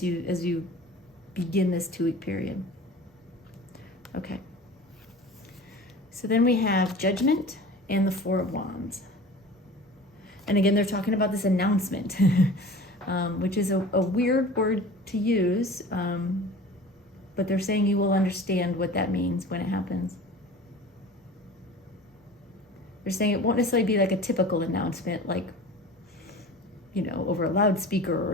you begin this 2-week period. Okay. So then we have Judgment and the Four of Wands. And again, they're talking about this announcement, which is a weird word to use, but they're saying you will understand what that means when it happens. They're saying it won't necessarily be like a typical announcement, like, over a loudspeaker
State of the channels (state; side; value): normal; both; correlation 0.40